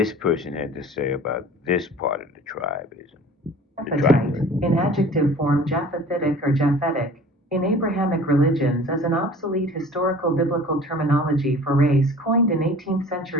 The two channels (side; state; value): both; normal; correlation 0.45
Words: person had to say about this part of the tribism. Japhethite, in adjective form Japhethitic or Japhetic, in Abrahamic religions as an obsolete historical biblical terminology for race coined in 18th